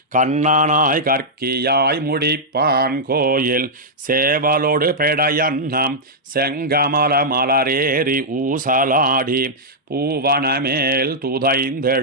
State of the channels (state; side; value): normal; both; correlation -0.08